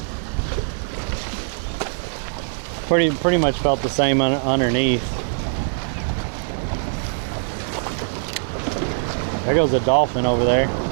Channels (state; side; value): silent; left; digital silence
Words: Pretty much felt the same underneath. There goes a dolphin over there.